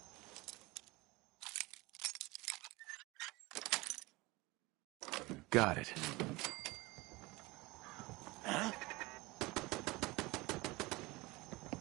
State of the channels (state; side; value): quieter; left; 22.4 dB